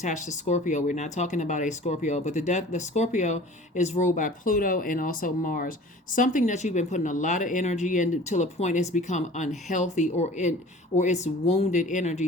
to Scorpio. We're not talking about a Scorpio, but the Scorpio is ruled by Pluto and also Mars. Something that you've been putting a lot of energy in till a point it's become unhealthy, or it's wounded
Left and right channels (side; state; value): both; normal; correlation 0.44